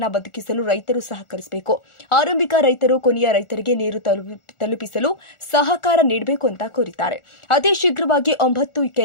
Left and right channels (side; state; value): right; late; 1.4 ms